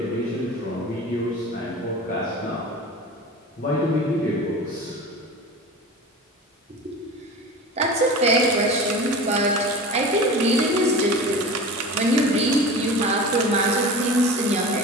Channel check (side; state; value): both; normal; correlation 0.34